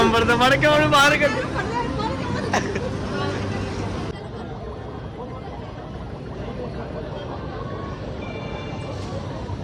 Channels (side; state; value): both; identical; correlation 1.00